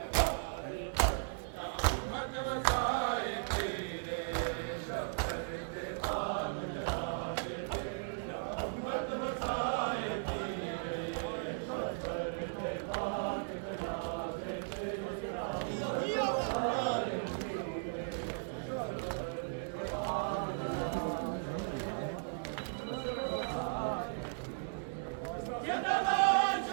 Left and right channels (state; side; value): silent; left; digital silence